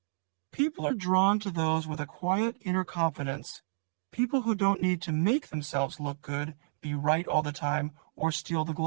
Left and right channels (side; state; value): left; silent; digital silence